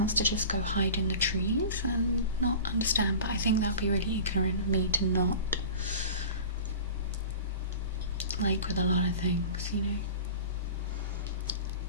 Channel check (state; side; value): inverted; both; correlation -0.37